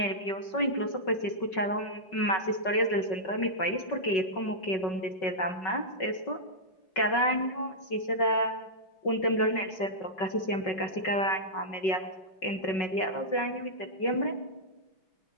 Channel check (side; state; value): right; late; 5.3 ms